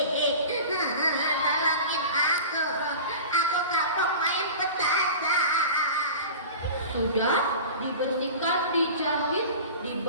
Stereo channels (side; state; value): both; inverted; correlation -0.35